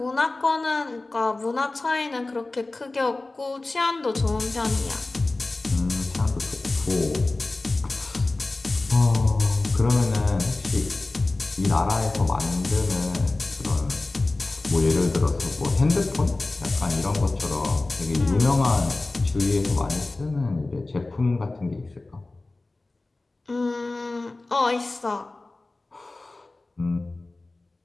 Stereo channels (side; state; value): right; quieter; 3.1 dB